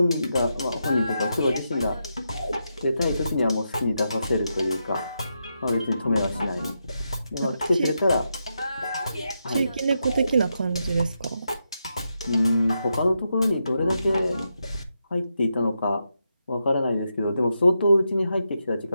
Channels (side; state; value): both; inverted; correlation -0.85